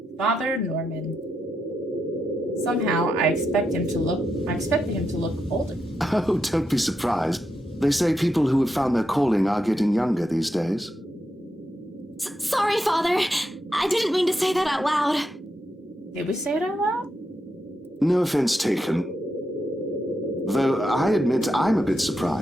Father Norman. Somehow, I expected him to look older. Oh, don't be surprised. They say people who have found their calling are getting younger these days. Sorry, Father. I didn't mean to say that out loud. Did we say it out loud? No offense taken. Though I admit I'm a bit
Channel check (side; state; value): both; normal; correlation 0.84